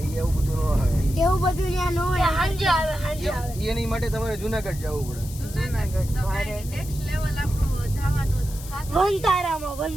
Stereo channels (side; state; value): left; noise; hiss, 15 dB below the sound